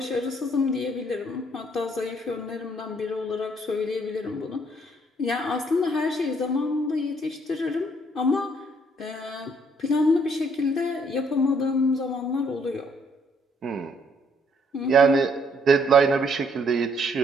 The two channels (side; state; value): both; normal; correlation 0.67